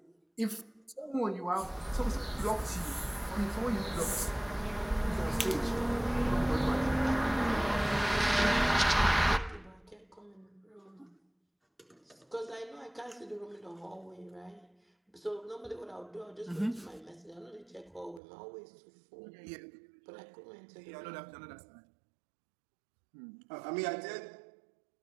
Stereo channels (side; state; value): left; drops out; at 18.2 s